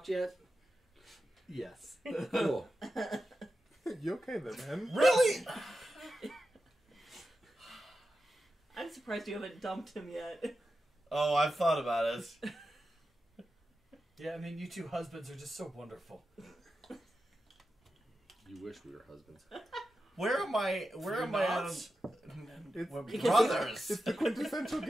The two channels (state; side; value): normal; both; correlation 0.91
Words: yet? Yes. Cool. You okay then, man? Really? I'm surprised you haven't dumped him yet. Oh, I've thought about it. Yeah, I mean, you two husbands are just so wonderful. You wish we were husbands. Where am I? Where am I on? It's, We're brothers. it's the quintessential